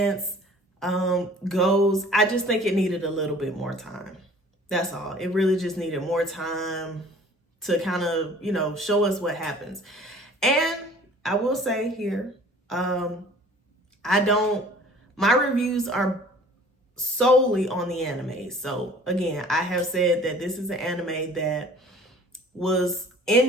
goes, I just think it needed a little bit more time. That's all. It really just needed more time to kind of, show us what happens. And I will say here, my reviews are solely on the anime. So again, I have said that this is an anime that was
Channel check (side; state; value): both; normal; correlation 0.49